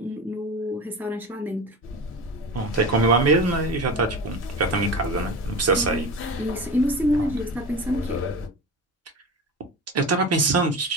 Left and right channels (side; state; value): both; normal; correlation 0.29